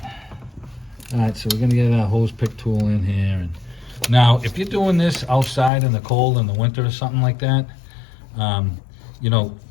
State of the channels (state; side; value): drops out; right; at 5.7 s